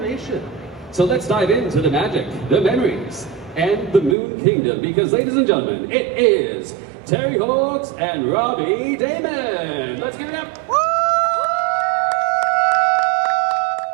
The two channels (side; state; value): left; drops out; at 4.2 s